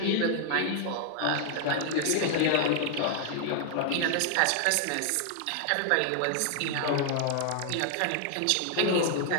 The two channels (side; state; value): both; different; correlation 0.00